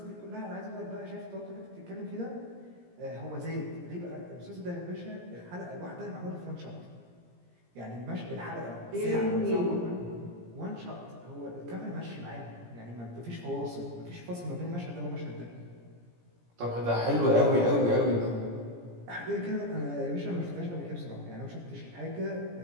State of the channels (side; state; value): left; late; 17 ms